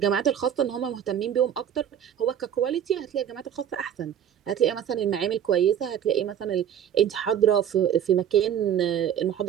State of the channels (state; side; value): quieter; left; 9.5 dB